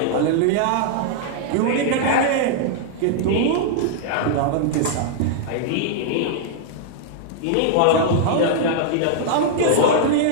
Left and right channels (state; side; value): different; both; correlation -0.01